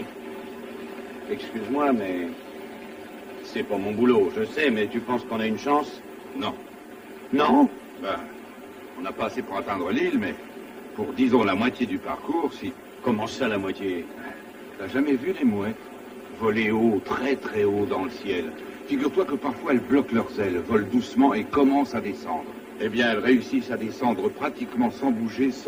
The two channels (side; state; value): both; identical; correlation 1.00